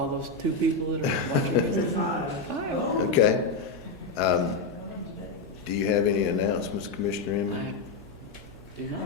those 2 people that are watching us? Five. 5. Okay. Do you have any announcements, Commissioner Emmett? I do not.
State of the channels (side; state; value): right; quieter; 3.9 dB